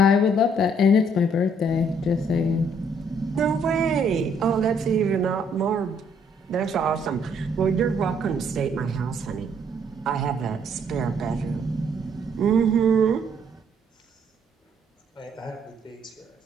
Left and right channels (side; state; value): both; normal; correlation 0.66